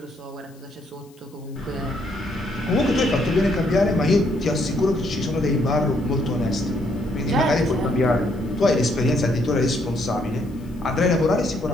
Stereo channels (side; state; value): left; noise; hiss, 30 dB below the sound